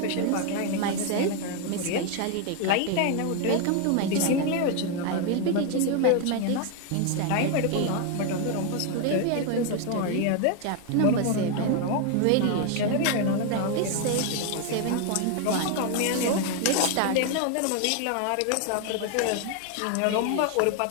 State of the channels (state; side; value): different; both; correlation 0.01